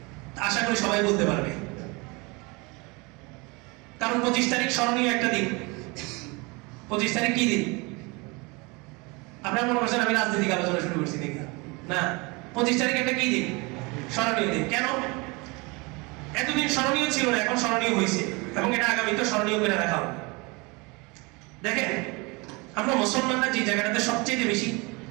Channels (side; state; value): left; quieter; 27.2 dB